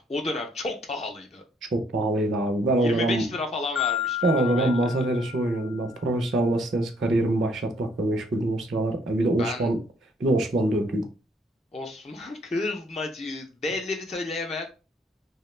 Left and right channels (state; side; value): normal; both; correlation 0.66